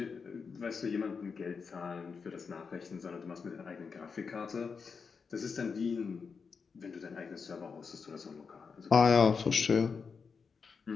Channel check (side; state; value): right; quieter; 5.5 dB